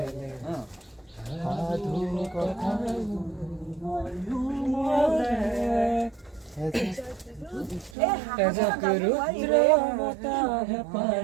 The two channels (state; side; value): drops out; left; at 8.0 s